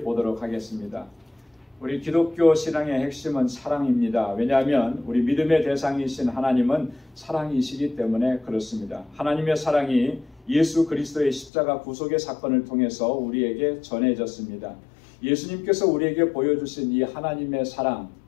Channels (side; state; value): right; drops out; at 11.5 s